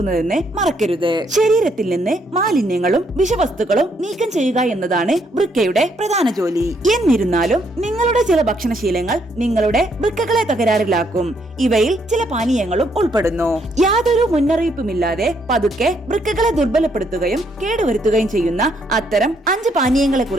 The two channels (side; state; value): both; normal; correlation 0.72